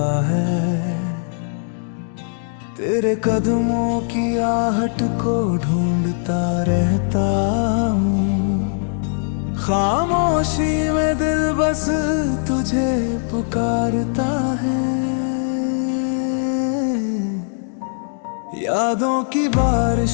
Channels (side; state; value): right; silent; digital silence